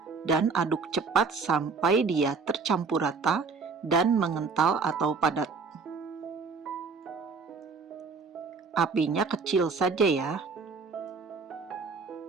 dan aduk cepat sampai dia tercampur rata dan mengental atau padat. Apinya kecil saja ya.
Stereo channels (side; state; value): left; quieter; 4.8 dB